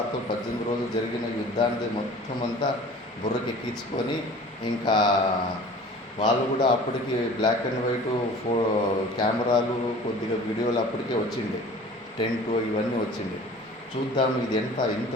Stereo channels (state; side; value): normal; both; correlation 0.44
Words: 18 రోజులు జరిగిన యుద్ధాన్ని మొత్తం అంతా బుర్రకెక్కించుకొని ఇంకా వాళ్ళు కూడా అప్పటికి బ్లాక్ అండ్ వైట్ కెమెరాలు కొద్దిగా వీడియోలు అప్పటికే వచ్చిండే, టెంట్ ఇవన్నీ వచ్చిండే. చూద్దాం ఇది ఇంత